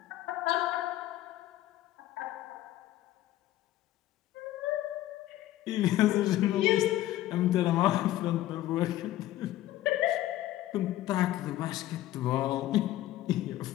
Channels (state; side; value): quieter; right; 14.6 dB